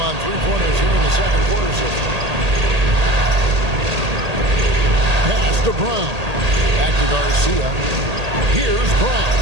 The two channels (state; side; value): late; left; 1.8 ms